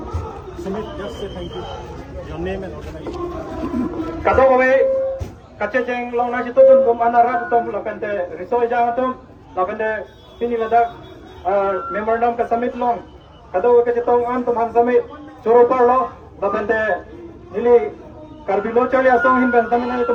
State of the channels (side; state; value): both; identical; correlation 1.00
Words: Sumit, just say thank you. Your name and organization. Kado kami kache cheng long na chito dun kum anara tum lapente risoy jang tum lapente pini ladak memorandum ka summit long kado ka chitong an tum han summit choro par lo lapente nili karbilo chali asong hin ben tamin